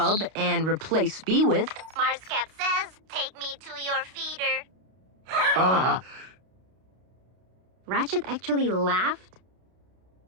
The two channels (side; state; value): left; late; 32 ms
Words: and replace B with... Marscat says, take me to your feeder. Ratchet actually laughed?